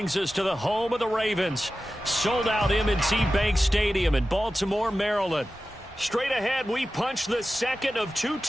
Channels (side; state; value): both; normal; correlation 0.94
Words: us to the home of the Ravens. Sold out M&T Bank Stadium in Baltimore, Maryland. Straight ahead, we punch the second of 2